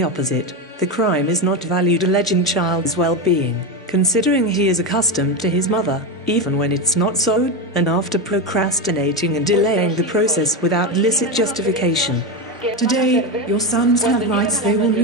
opposite, the crime is not valued alleging child's well-being, considering he is accustomed to his mother, even when it's not so, and after procrastinating and delaying the process without licit justification. Today, your sons have rights they will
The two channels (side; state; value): both; normal; correlation 0.14